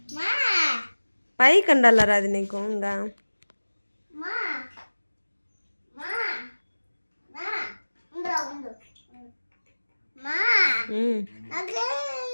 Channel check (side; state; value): both; inverted; correlation -1.00